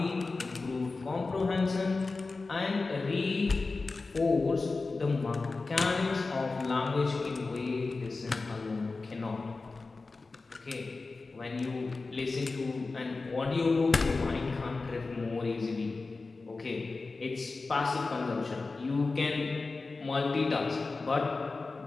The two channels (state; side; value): quieter; right; 3.8 dB